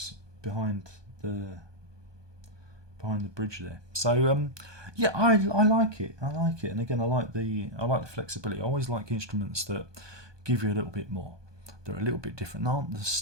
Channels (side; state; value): left; late; 1.2 ms